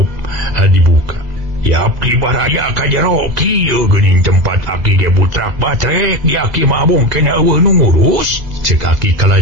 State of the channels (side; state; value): left; late; 2.0 ms